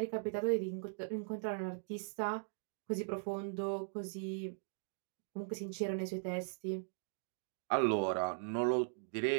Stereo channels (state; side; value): silent; left; digital silence